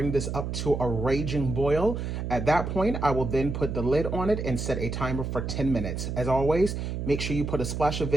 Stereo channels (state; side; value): noise; right; hum, 4 dB below the sound